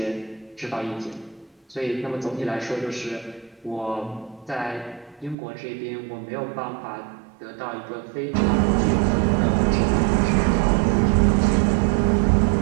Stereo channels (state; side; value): drops out; left; at 5.4 s